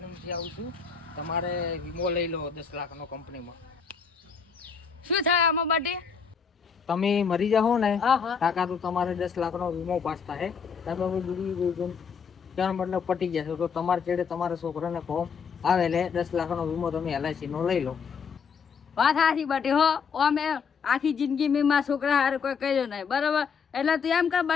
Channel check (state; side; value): quieter; right; 6.2 dB